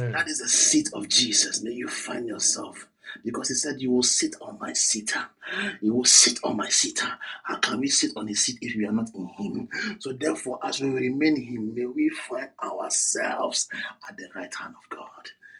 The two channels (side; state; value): both; identical; correlation 1.00